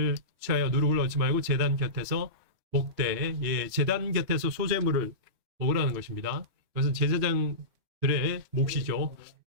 취하여 누룩을 얻지 말고 제단 곁에서 먹되 예, 제단 곁에서 소재물을 먹으라는 것입니다. 그것은 제사장들의 몫이죠.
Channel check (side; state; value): left; late; 3.1 ms